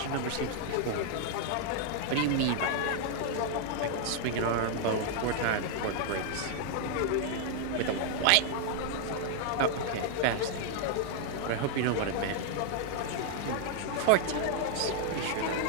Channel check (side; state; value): both; different; correlation 0.00